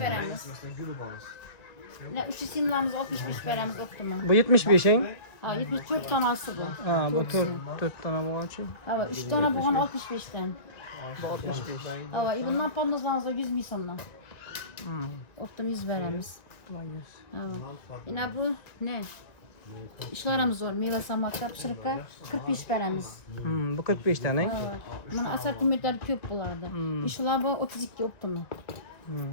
3 simlamız 65 veremiz optimum. Bu 75'in. Ha, 74 tanesi bu. Ha, bu 4 tane bu için. Ha, 3 tane buğan 65'ten. Bu 65. Ha, bundan pamuzlarımızda 100 mil sonuna. Optim 100 veremiz. Tamam 100. Ha, yine bu ne? İşlerimiz var. Meyve samaklar, pişirikler 45 veremiz. Bu 45 tane. Ha, bunun asortimentleri köp bulardı. İşler bu 32 optim.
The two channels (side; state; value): right; late; 1.9 ms